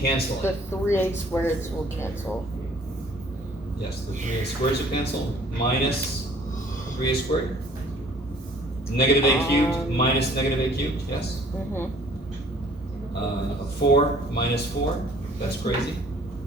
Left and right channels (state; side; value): normal; both; correlation 0.55